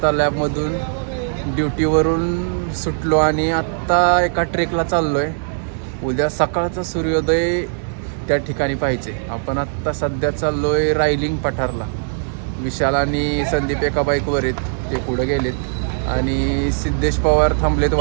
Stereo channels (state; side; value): silent; left; digital silence